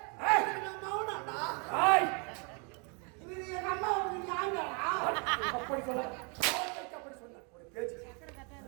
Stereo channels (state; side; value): quieter; left; 34.7 dB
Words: அப்படி சொல்ல ஒரு பேச்சு